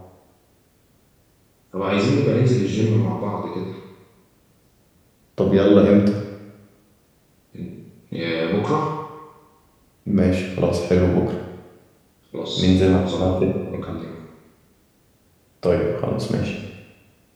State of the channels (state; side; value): identical; both; correlation 1.00